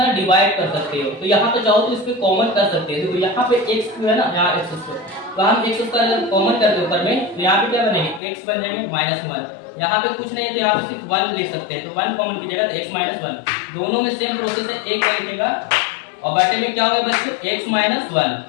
डिवाइड कर सकते हो, तो यहाँ पे चाहो तो इस पे कॉमन कर सकते हैं। देखो यहाँ पे x है ना, यहाँ x स्क्वायर, तो हम x स्क्वायर अगर कॉमन करते हैं ऊपर में तो यहाँ पे क्या बनेंगे x बन जाएंगे -1, यहाँ पे कुछ नहीं है तो यहाँ पे सिर्फ 1 ले सकते हैं, तो 1 कॉमन कीजिएगा तो x -1, दोनों में सेम प्रोसेस है, एक का लिखेगा और बटे में क्या होगा बच्चों x -1,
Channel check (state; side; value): drops out; right; at 8.2 s